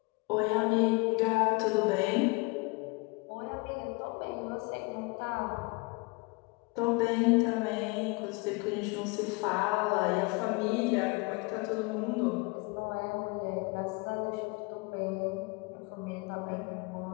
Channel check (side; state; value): right; quieter; 27.9 dB